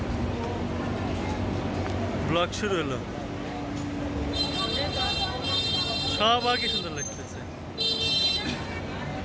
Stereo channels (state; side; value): identical; both; correlation 1.00